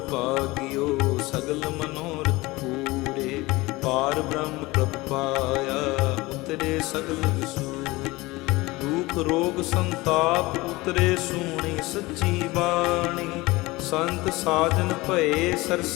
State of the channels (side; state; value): right; quieter; 21.3 dB